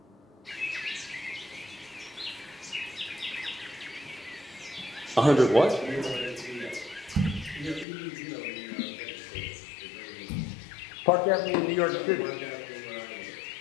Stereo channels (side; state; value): right; drops out; at 7.9 s